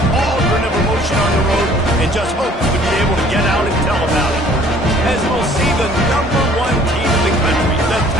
cauldron of emotion on the road and just hopes to be able to get out and tell about it. As we'll see the #1 team in the country, the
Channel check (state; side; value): normal; both; correlation 0.55